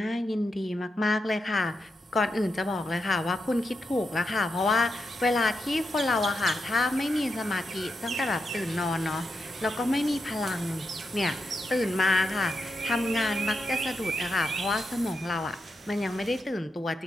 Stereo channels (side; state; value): both; normal; correlation 0.85